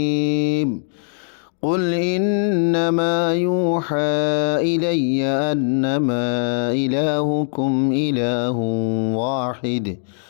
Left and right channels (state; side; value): silent; right; digital silence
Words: قل إنما يوحى إلي أنما إلهكم إله واحد